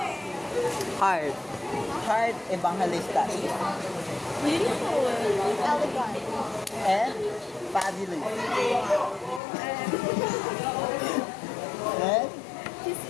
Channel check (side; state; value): right; drops out; at 9.4 s